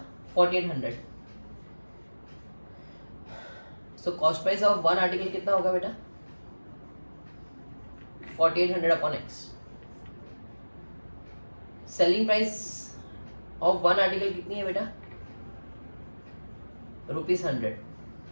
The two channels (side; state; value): both; inverted; correlation -1.00